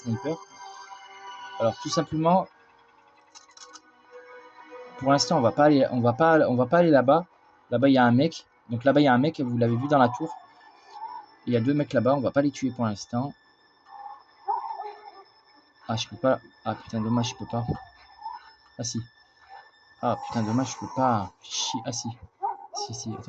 Alors tout simplement, pour l'instant on va pas aller là-bas. Là-bas il y a un mec. Donc là-bas il y a un mec, vous l'avez vu dans la tour. Il y a deux mecs là-bas, on va pas les tuer pour l'instant. Ah je peux pas. Ah putain dommage je peux pas. Ah si. Ah putain dommage je peux pas. Ah si. Si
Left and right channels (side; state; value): both; identical; correlation 1.00